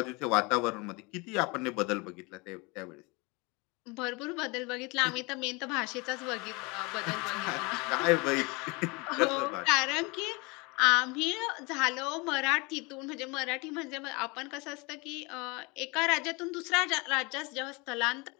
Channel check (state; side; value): quieter; right; 27.3 dB